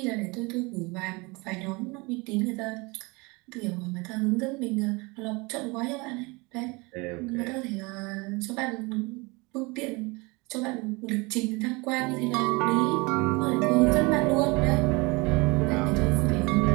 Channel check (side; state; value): left; quieter; 26.3 dB